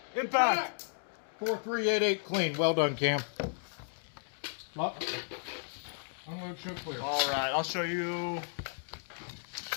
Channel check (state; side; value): silent; right; digital silence